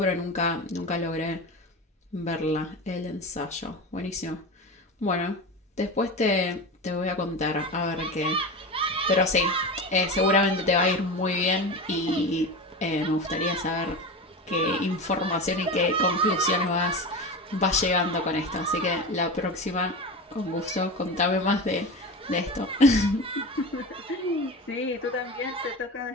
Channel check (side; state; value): both; normal; correlation 0.26